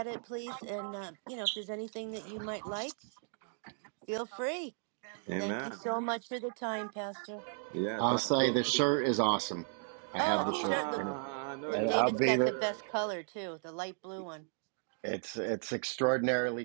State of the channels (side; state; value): left; silent; digital silence